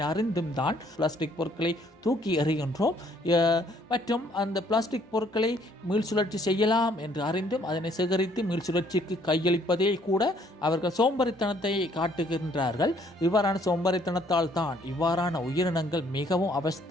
அறிந்தும் தான் பிளாஸ்டிக் பொருட்களை தூக்கி எறிகின்றோம். மற்றும் அந்த பிளாஸ்டிக் பொருட்களை மீள்சுழற்சி செய்யலாம் என்று அறிந்தும் அதனை சேகரித்து மீள்சுழற்சிக்கு கையளிப்பதே கூட அவர்கள் சோம்பரித்தனத்தை காட்டுகின்றார்கள். இவ்வாறான சோம்பரித்தனத்தால் தான் இவ்வாறான உயிரினங்கள் மிகவும்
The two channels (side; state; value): both; normal; correlation 0.63